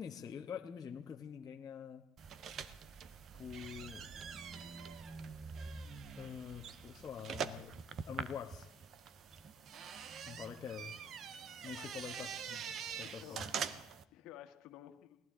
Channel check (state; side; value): normal; both; correlation 0.60